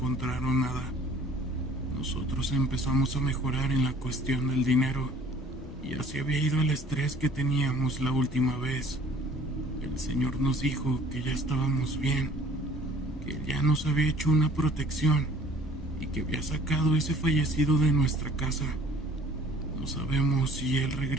nada. Nosotros empezamos a mejorar en la cuestión del dinero y así había ido el estrés que teníamos la última vez. El señor nos dijo que ya estábamos bien, que ya nos había hecho una protección y que había sacado ese fallecido de nuestra casa. No sabemos si él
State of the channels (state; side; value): normal; both; correlation 0.53